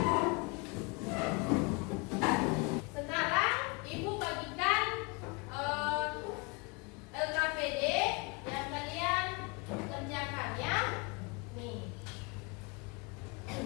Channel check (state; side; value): quieter; right; 29.8 dB